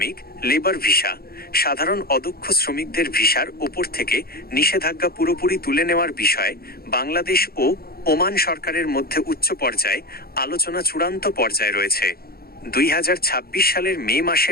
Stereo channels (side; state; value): right; late; 0.44 ms